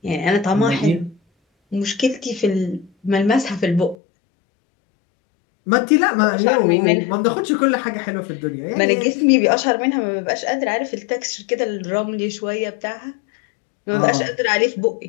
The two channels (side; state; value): right; drops out; at 4.0 s